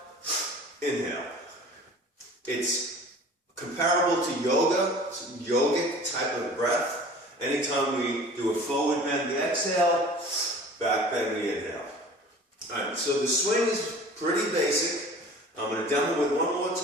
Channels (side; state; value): both; normal; correlation 0.44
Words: inhale. It's comparable to yoga. It's a yogic type of breath. Anytime we do a forward bend, we exhale, back bend, we inhale. Alright, so the swing is pretty basic. I'm going to demo it one more